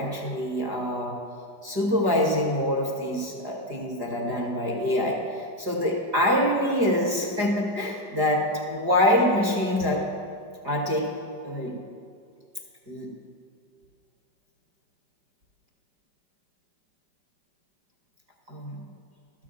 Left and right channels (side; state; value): left; late; 4.9 ms